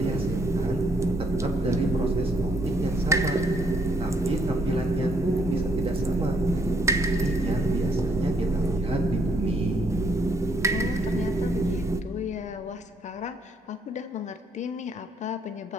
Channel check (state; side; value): normal; both; correlation 0.70